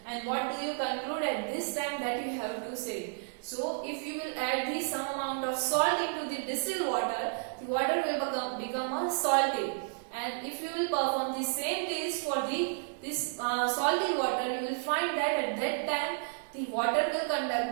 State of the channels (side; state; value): left; silent; digital silence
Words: And what do you conclude at this time, that you have to say? So if you will add the some amount of salt into the distilled water, the water will become a salty. And if you will perform the same taste for this salty water, you will find that at that time the water will conduct